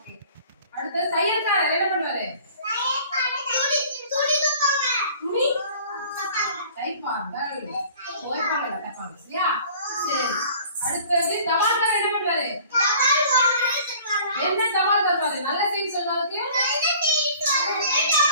அடுத்து தையல்காரர் என்ன பண்ணுவாரு? துணி தைப்பார்கள். துவைப்பாங்க தைப்பாங்க. சரியா? சரி. அடுத்து தபால்காரர் என்ன பண்ணுவாரு? என்ன தபால் தருவாரு? நல்ல செய்தி சொல்றதுக்கு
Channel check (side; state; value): both; inverted; correlation -0.49